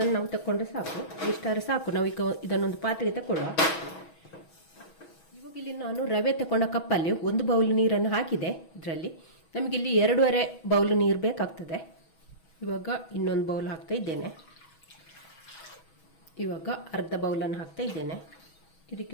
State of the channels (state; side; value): late; right; 6.2 ms